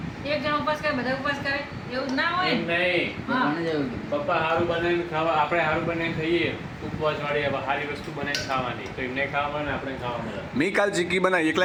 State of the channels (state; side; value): identical; both; correlation 1.00